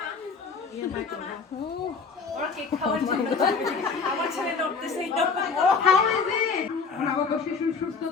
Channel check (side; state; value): right; quieter; 5.1 dB